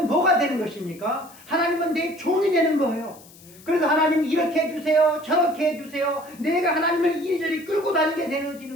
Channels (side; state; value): left; noise; hiss, 23 dB below the sound